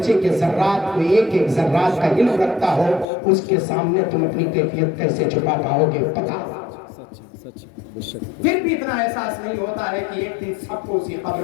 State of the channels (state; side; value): drops out; right; at 3.1 s